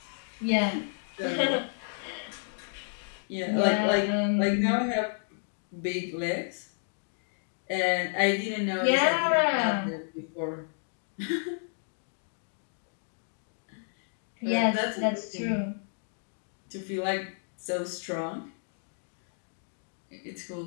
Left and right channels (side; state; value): right; silent; digital silence